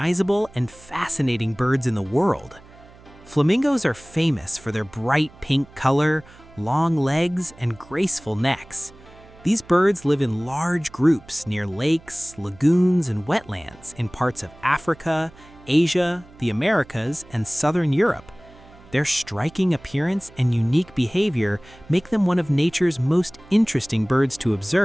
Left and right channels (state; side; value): noise; right; hum, 23 dB below the sound